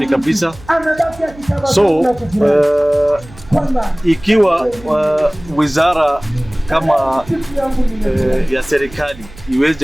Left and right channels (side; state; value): right; noise; hum, 20 dB below the sound